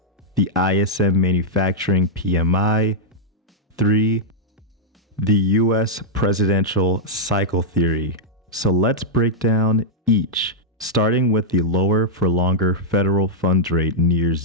The ISM Manufacturing PMI. 3. The U.S. presidential cycle theory. So let's break down each, starting with the lower for longer federal funds rate near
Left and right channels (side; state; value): both; normal; correlation -0.05